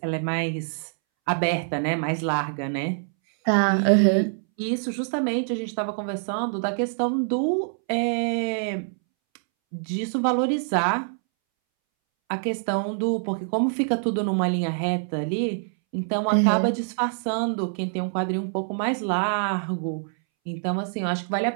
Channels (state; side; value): silent; left; 62 dB below the other